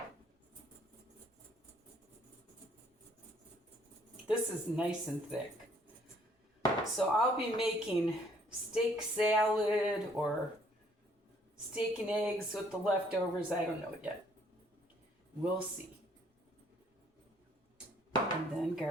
This is nice and thick. So I'll be making steak salad or steak and eggs with the leftovers. I don't know yet. We'll see. And then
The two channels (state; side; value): normal; both; correlation 0.63